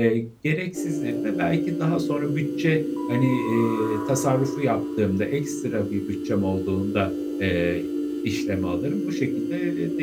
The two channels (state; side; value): identical; both; correlation 1.00